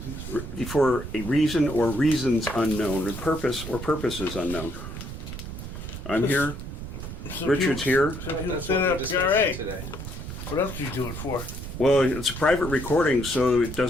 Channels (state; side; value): noise; right; rumble, 8 dB below the sound